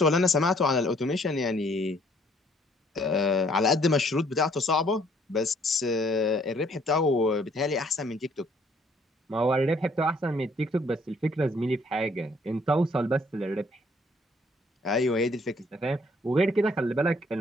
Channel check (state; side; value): normal; both; correlation 0.63